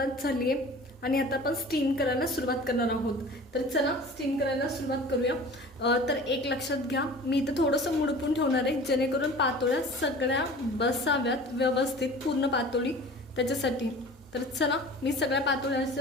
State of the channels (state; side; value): noise; right; hum, 27 dB below the sound